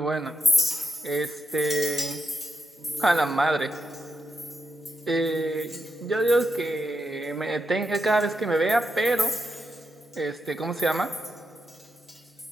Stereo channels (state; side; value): normal; both; correlation 0.84